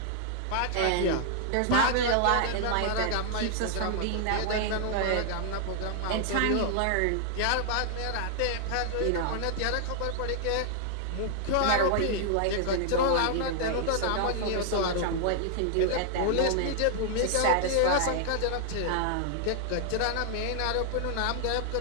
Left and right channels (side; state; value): both; different; correlation 0.00